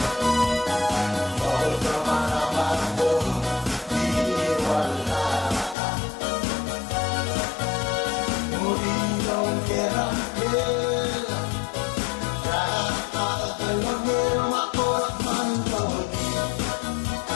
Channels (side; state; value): right; drops out; at 5.8 s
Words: Bawal ka man naman ko. Di wala ka. Murino kera kera. Alam mo ako at manlawagi.